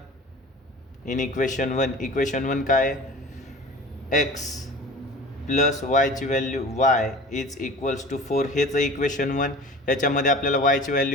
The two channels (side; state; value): both; normal; correlation 0.39